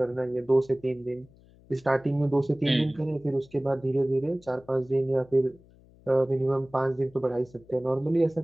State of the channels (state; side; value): noise; left; hum, 26 dB below the sound